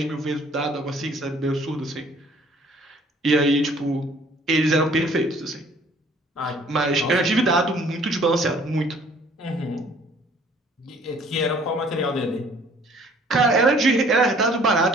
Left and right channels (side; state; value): both; normal; correlation 0.56